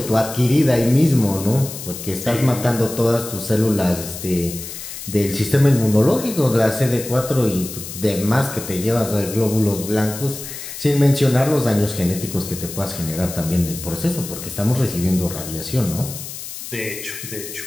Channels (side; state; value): left; noise; hiss, 10 dB below the sound